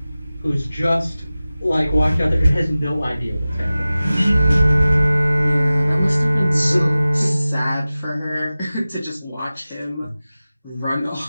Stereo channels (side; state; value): both; inverted; correlation -0.96